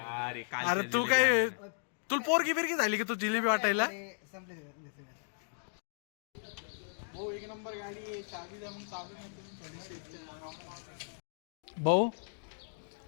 काय अरे तू काय, तुला पोरगी बिरगी झाली की तू जिलेबी वाटायला? भाऊ एक नंबर गाडी आहे, चावी द्या मग. चावी भाऊ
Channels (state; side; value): silent; right; digital silence